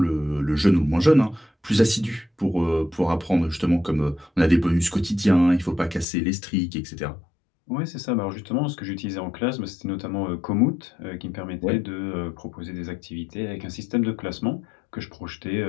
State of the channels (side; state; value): right; drops out; at 6.1 s